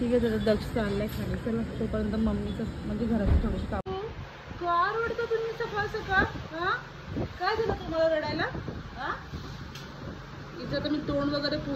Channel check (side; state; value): both; identical; correlation 1.00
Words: आहे, त्याचा दक्ष चाललाय खाली. चला तोपर्यंत मम्मीचं म्हणजे घराचं थोडंसं काम. का रडता तुम्ही सकाळ सकाळ? हा काय झालं तुम्हाला रडायला? हा इथं तर मी तोंड वगैरे